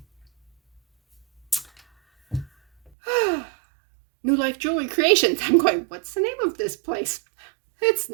New Life Jewelry Creations. I'm going, what's the name of this place? It's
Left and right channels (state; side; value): drops out; left; at 2.9 s